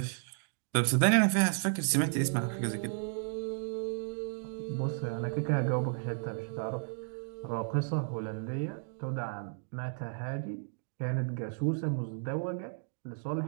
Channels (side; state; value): left; silent; digital silence